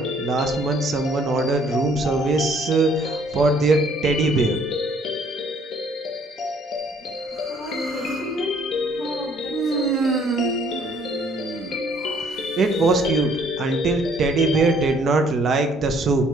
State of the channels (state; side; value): normal; both; correlation 0.62